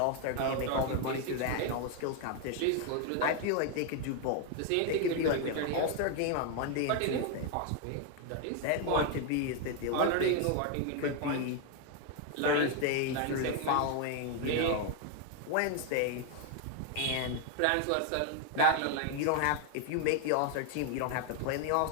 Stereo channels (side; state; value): both; different; correlation 0.01